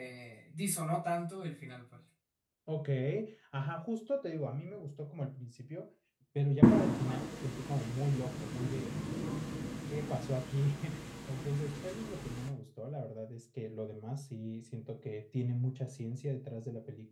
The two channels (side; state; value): both; identical; correlation 1.00